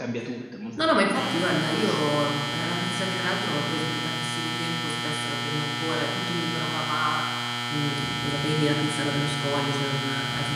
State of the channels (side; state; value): both; identical; correlation 1.00